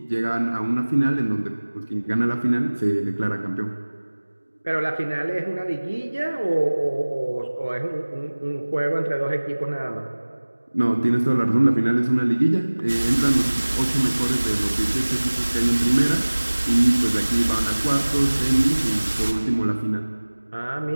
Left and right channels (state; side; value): inverted; both; correlation -1.00